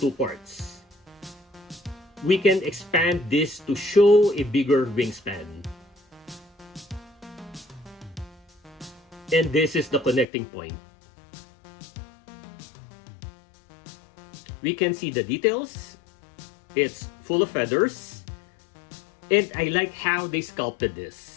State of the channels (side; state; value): right; drops out; at 10.2 s